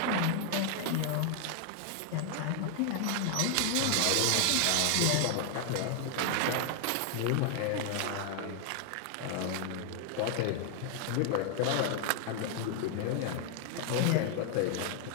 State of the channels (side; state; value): both; different; correlation 0.00